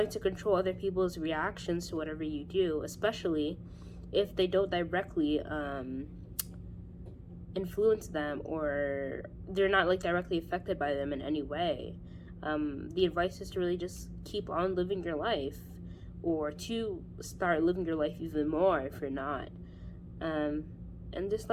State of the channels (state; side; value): identical; both; correlation 1.00